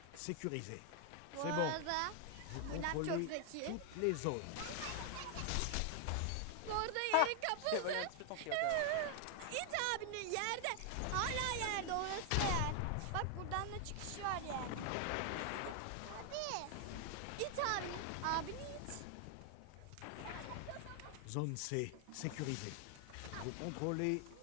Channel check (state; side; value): different; both; correlation 0.00